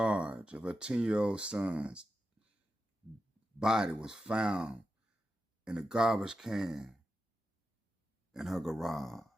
of her 10-year-old son's body was found in a garbage can in her garage.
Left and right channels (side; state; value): both; normal; correlation 0.90